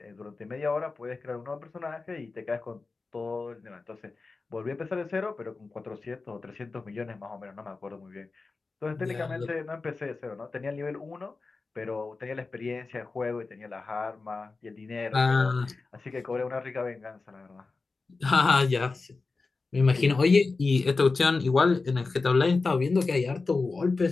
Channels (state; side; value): quieter; right; 3.9 dB